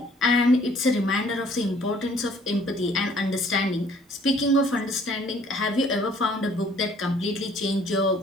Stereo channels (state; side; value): normal; both; correlation 0.58